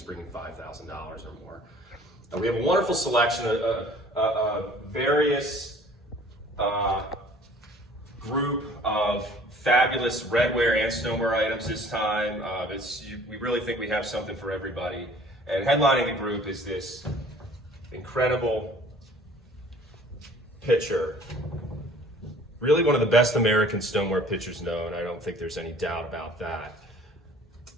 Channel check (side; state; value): both; normal; correlation 0.51